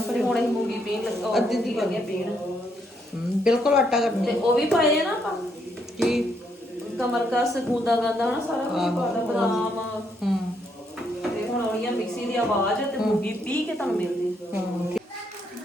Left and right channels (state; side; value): normal; both; correlation 0.74